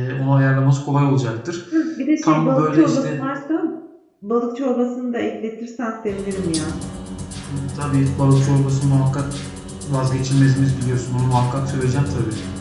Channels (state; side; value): identical; both; correlation 1.00